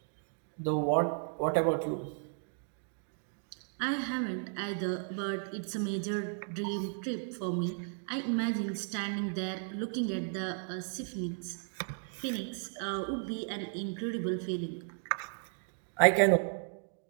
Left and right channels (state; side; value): silent; left; 55 dB below the other